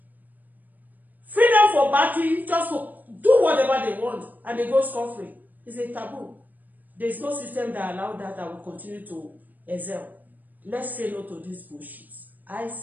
freedom for batting, just to do whatever they want, and they go scot-free. It's a taboo. There is no system that allows that will continue to excel. Let's say no to this bullshit. I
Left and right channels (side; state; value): left; late; 0.084 ms